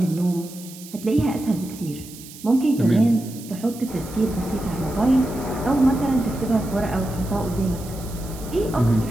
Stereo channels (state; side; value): noise; right; hiss, 17 dB below the sound